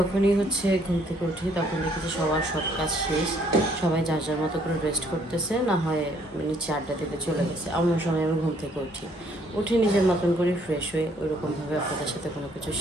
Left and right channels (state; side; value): normal; both; correlation 0.65